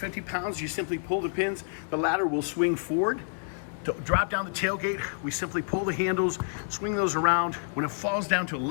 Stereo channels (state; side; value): silent; right; 59 dB below the other